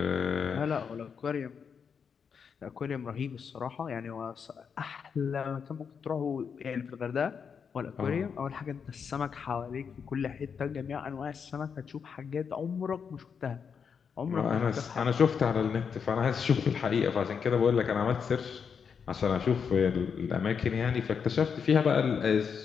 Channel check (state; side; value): quieter; right; 6.5 dB